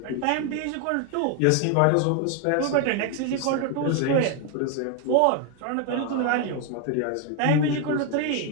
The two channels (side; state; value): both; different; correlation 0.01